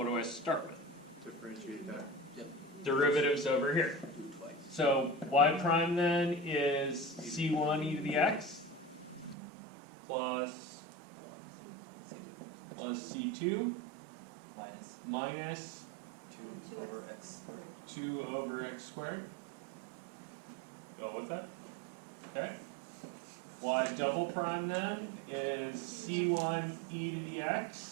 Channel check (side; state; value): left; drops out; at 9.3 s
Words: do I start with? Differentiate that. Yep. Derivatives over here. Do it twice. So y prime then is c1 e to the x plus c2 minus 2 over x. 2 over x squared. Go with that. Okay. Y double prime then is c1 e to the